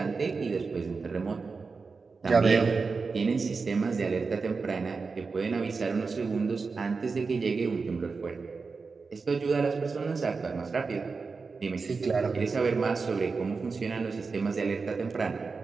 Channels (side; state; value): left; quieter; 4.6 dB